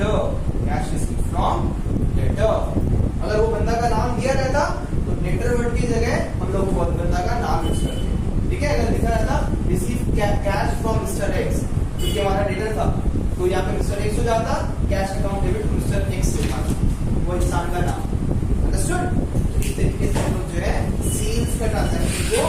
cash receive from debtor. अगर वो बंदा का नाम दिया रहता तो डेटर वर्ड की जगह हम लोग वो बंदा का नाम यूज करते हैं, ठीक है। अगर लिखा रहता receive cash from mister x, क्योंकि हमारा डेटर था, तो यहाँ पे मिस्टर एक्स हो जाता, cash account debit mister x से वो इंसान का नाम, अंडरस्टूड। इस तरीके से हम लोग जो है सेल्स का ट्रांजैक्शन को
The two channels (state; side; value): identical; both; correlation 1.00